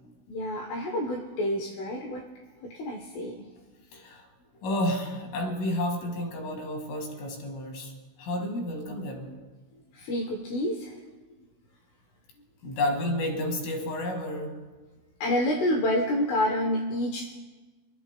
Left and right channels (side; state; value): right; late; 16 ms